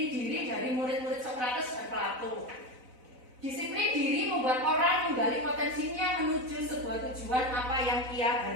diri dari murid-murid Sokrates dan Plato. Disiplin diri membuat orang menggali potensinya menuju sebuah tujuan apa yang ia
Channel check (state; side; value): late; left; 4.0 ms